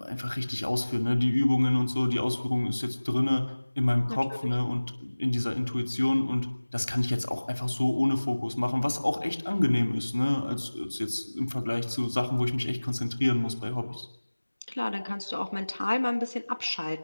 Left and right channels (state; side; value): inverted; both; correlation -1.00